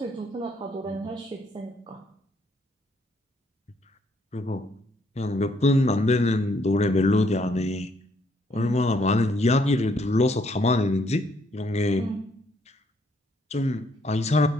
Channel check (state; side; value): normal; both; correlation 0.69